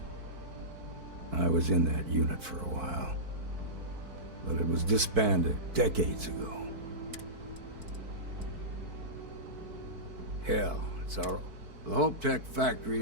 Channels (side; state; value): left; late; 4.5 ms